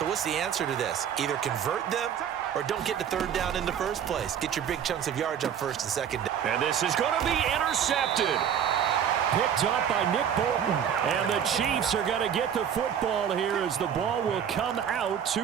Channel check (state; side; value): quieter; left; 8.7 dB